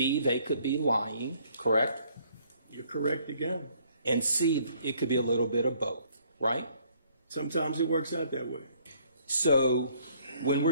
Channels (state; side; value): inverted; both; correlation -0.63